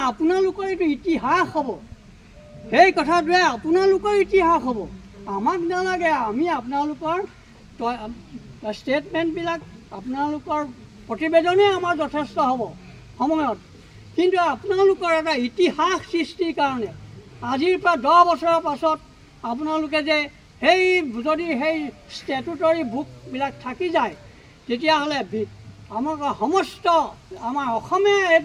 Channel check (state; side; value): identical; both; correlation 1.00